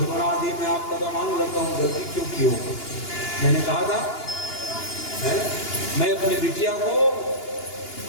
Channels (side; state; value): right; late; 2.9 ms